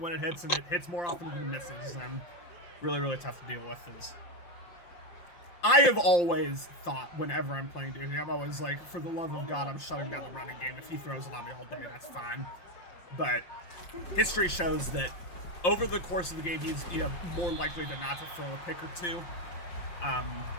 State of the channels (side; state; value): right; late; 5.7 ms